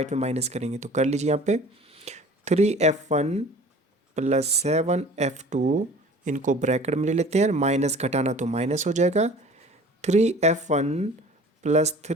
में माइनस करेंगे। तो कर लीजिए यहाँ पे 3F1 प्लस 7F2, इनको ब्रैकेट में ले लेते हैं, माइनस घटाना तो माइनस हो जाएगा 3F1 प्लस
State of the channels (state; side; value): normal; both; correlation 0.46